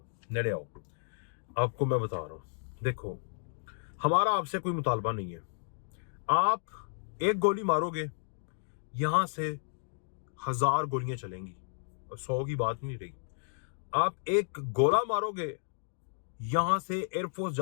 नेड़े आओ, आपको मैं बता रहा हूँ। देखो, हमारा आपसे कोई मुतालबा नहीं है। आप एक गोली मारोगे, यहां से 1000 गोलियां चलेंगी और 100 की बात नहीं रही। आप एक गोला मारोगे, यहां से एयरफोर्स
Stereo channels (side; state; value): right; silent; digital silence